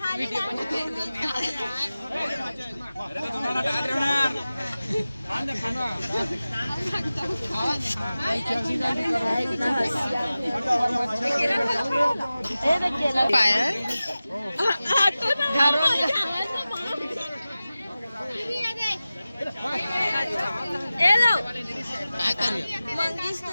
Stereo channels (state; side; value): inverted; both; correlation -0.96